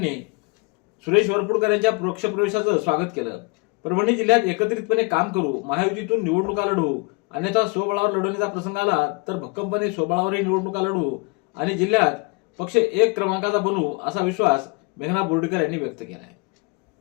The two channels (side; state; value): right; quieter; 30.0 dB